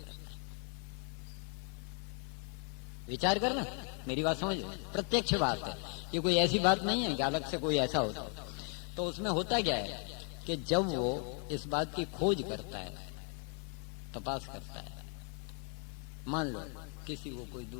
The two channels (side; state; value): right; quieter; 39.8 dB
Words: है। विचार करना, मेरी बात समझ, प्रत्यक्ष बात है, ये कोई ऐसी बात नहीं है कि अलग से कोई ऐसा होता। तो उसमें होता क्या है कि जब वो इस बात की खोज करता है, तपास करता है, मान लो किसी को कोई